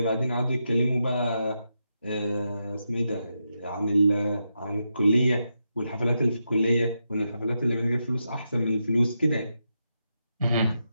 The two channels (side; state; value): both; inverted; correlation -0.86